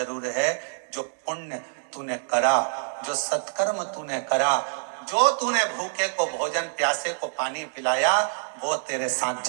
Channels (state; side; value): silent; left; digital silence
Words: है, जो पुण्य तूने करा, जो सत्कर्म तूने करा, जो तूने भूखे को भोजन, प्यासे को पानी पिलाया, वो तेरे साथ